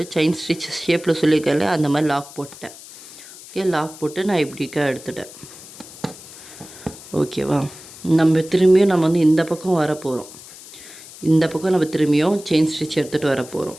செயின் ஸ்டிச் ஷேப்பில் சொல்லியிருக்கேன் இல்லையா? அந்த மாதிரி லாக் போட்டேன். ஓகே, லாக் போட்டு நான் இப்படிக்கா எடுத்துட்டேன். ஓகேவா? நம்ம திரும்பியும் நம்ம இந்த பக்கம் வர போகிறோம். இந்த பக்கம் நம்ம திரும்பியும் செயின் ஸ்டிச் எடுத்துகிட்டு வர போகிறோம்.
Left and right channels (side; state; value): left; noise; hiss, 17 dB below the sound